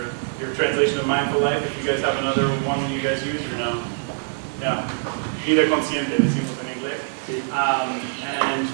your translation of Mindful Life, if you guys have another one you guys use or no? Yeah, vida consciente decimos en inglés. And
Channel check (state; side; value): silent; left; 63 dB below the other